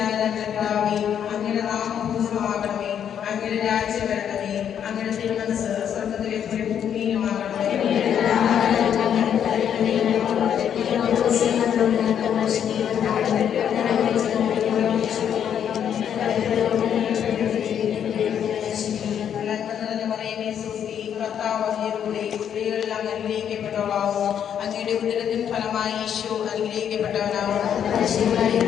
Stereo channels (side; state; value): right; quieter; 8.9 dB